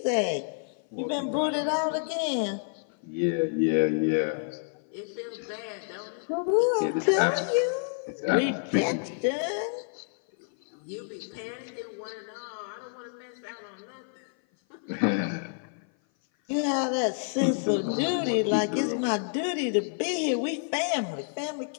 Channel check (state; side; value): silent; right; 55 dB below the other